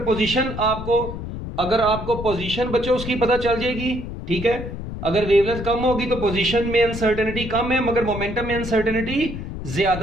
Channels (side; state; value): left; noise; rumble, 8 dB below the sound